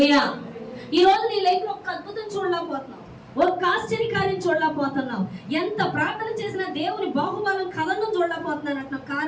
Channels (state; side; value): identical; both; correlation 1.00